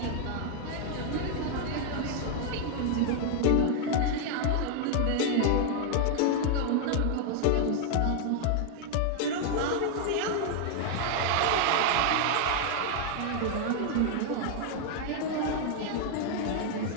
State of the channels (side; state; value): both; different; correlation 0.00